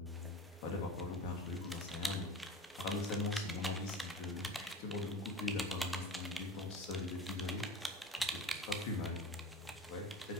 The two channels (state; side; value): normal; both; correlation 0.34